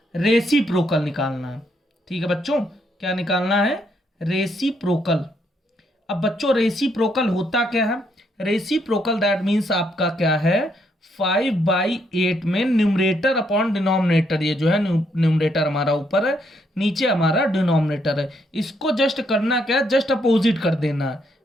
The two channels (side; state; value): both; normal; correlation 0.74